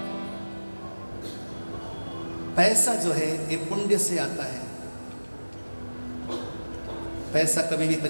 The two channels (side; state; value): both; inverted; correlation -1.00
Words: पैसा जो है ये पुण्य से आता है, पैसा कभी भी